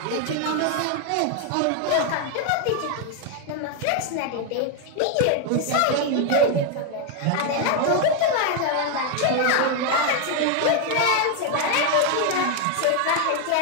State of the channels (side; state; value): both; different; correlation 0.01